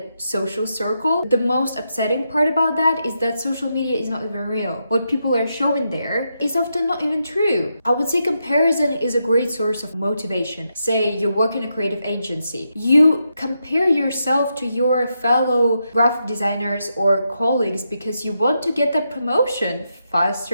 social circle. The most upsetting part about that is that social media is not even real. What people are showing there is often not even true. I would say comparison is a great source of motivation. Say you work in a creative agency, you compare yourself to your fellow graphic designers or colleagues because you want to get that promotion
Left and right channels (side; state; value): both; inverted; correlation -0.84